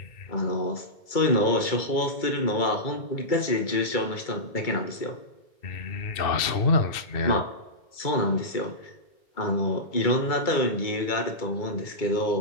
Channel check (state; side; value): late; right; 2.3 ms